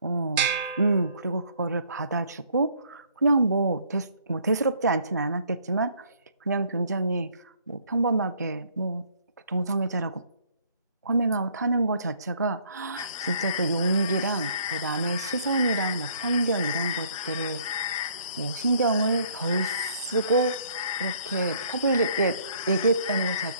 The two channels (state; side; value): inverted; both; correlation -0.62